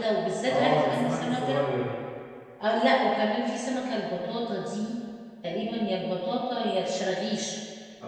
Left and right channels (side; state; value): both; identical; correlation 1.00